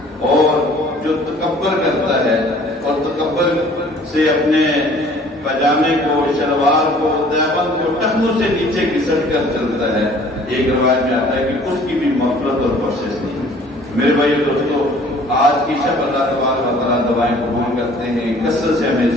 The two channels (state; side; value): normal; both; correlation 0.53